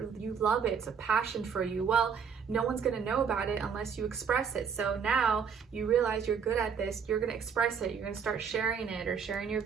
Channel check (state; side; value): quieter; left; 6.7 dB